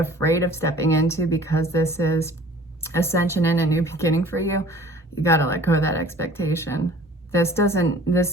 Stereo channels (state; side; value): normal; both; correlation 0.49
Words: of stepping into because this is ascension and a new beginning for you, you gotta let go of that expectation. This